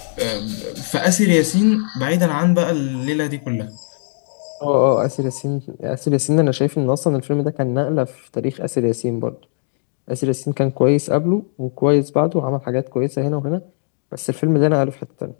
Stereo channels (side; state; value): right; silent; digital silence